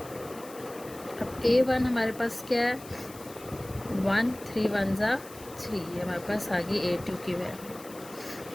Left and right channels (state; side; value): noise; left; hiss, 18 dB below the sound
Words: अब a1 हमारे पास क्या है 1, 3 1 जा 3, ये हमारे पास आ गई a2 की